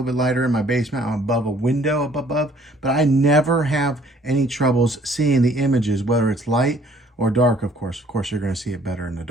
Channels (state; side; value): normal; both; correlation 0.59